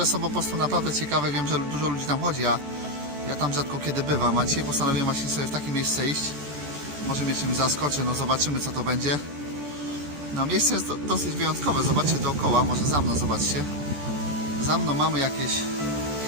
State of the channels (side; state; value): left; late; 14 ms